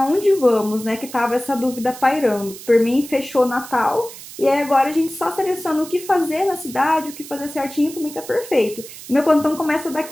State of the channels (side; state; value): right; noise; hiss, 15 dB below the sound